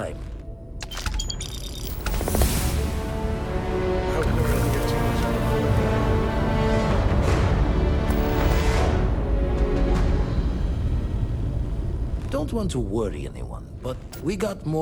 I hope Cora doesn't get too much out of it. Don't want to worry anyone, but we got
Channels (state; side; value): identical; both; correlation 1.00